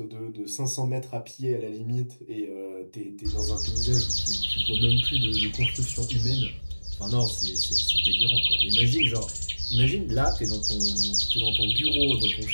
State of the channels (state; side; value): inverted; both; correlation -1.00